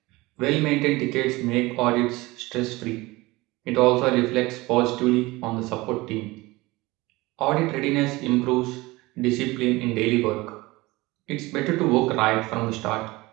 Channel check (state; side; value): quieter; left; 21.2 dB